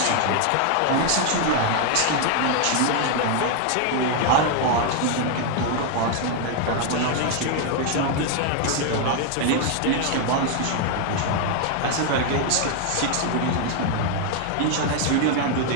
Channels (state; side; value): different; both; correlation 0.00